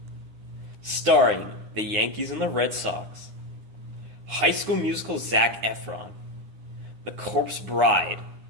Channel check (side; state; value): left; late; 9.8 ms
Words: Starring the Yankees and the Red Sox, High School Musical Zac Efron, The Corpse Bride,